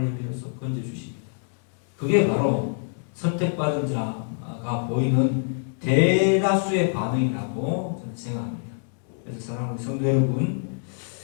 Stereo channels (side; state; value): right; silent; 61 dB below the other